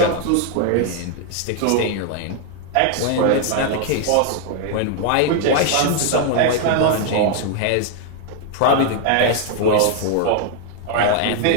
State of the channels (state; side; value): different; both; correlation 0.00